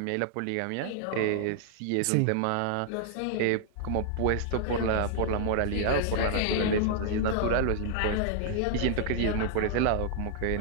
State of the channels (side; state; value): both; different; correlation -0.01